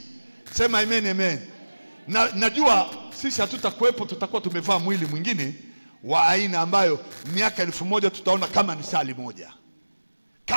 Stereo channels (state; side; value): inverted; both; correlation -1.00